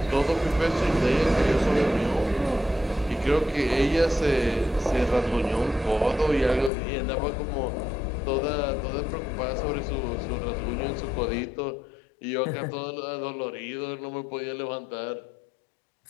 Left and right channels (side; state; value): right; drops out; at 6.7 s